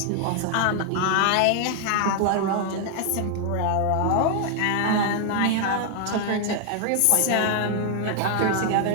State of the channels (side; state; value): both; different; correlation 0.00